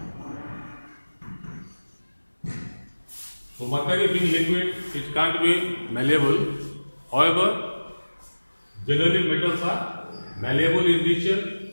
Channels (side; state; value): both; inverted; correlation -1.00